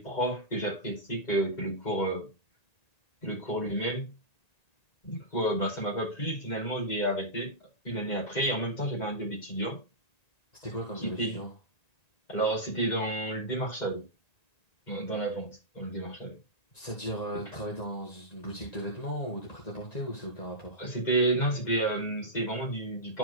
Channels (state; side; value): late; right; 1.9 ms